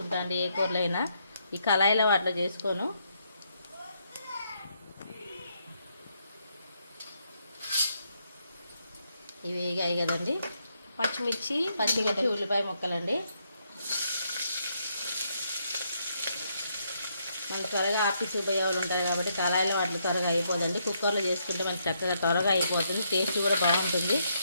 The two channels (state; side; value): inverted; both; correlation -0.76